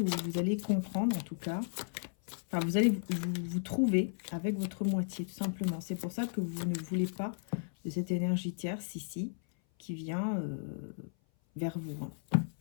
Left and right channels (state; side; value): silent; right; 55 dB below the other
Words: ou vous allez comprendre en tout cas. Enfin, vous allez vous trouver avec votre moitié, tout simplement. C'est pour ça que vous ne voulez pas de cette énergie tierce ici, qui vient vers vous.